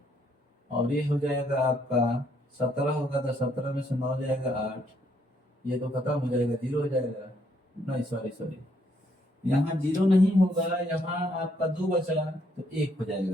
और ये हो जाएगा आपका 17 होगा, तो 17 में से 9 जाएगा 8, ये तो खत्म हो जाएगा 0 हो जाएगा। नहीं सॉरी, यहाँ 0 नहीं होगा, यहाँ आपका 2 बचा तो 1 हो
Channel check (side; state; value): both; normal; correlation 0.71